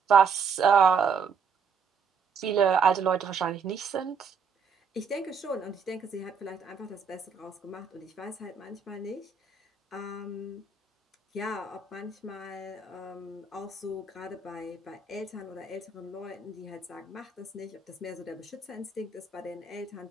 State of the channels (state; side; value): quieter; left; 5.6 dB